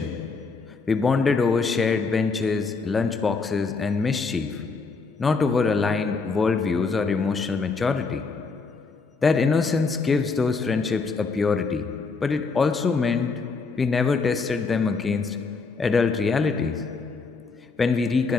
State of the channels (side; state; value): right; quieter; 4.5 dB